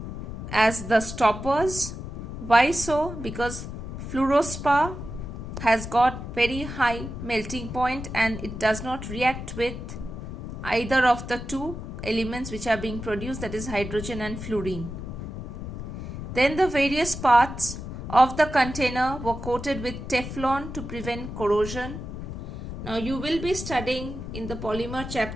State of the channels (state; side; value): noise; left; rumble, 8 dB below the sound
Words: as the stoppers. Why so? Because fluorspar has got very high melting point and it does not react with either of the two elements which are being produced, that is hydrogen and fluorine. Then the various parts of the container were coated with Teflon to prevent corrosion. Now you will be studying in the polymer